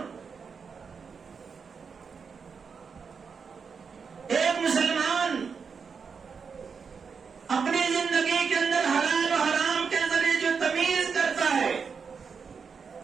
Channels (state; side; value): quieter; left; 5.8 dB